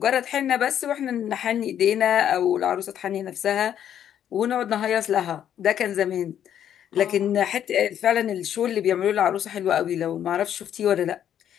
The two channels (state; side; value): quieter; right; 9.9 dB